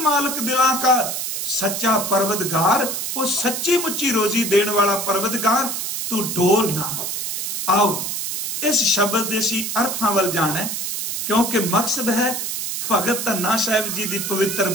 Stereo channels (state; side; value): noise; right; hiss, 3 dB below the sound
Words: मालक दिला का सच्चा परवतगार। वो सच्ची मुच्ची रोजी देने वाला परवतगार। तू डोल ना। आओ इस शब्द देसी अर्थां वल जाना, क्योंकि मकसद है भगत धन्ना साहिब जी की पवित्र